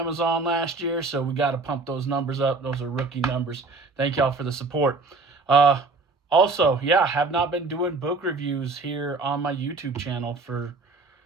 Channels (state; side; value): quieter; left; 3.8 dB